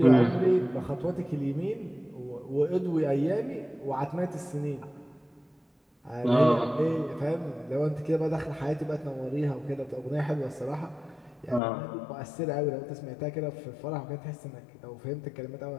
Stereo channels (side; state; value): right; drops out; at 11.6 s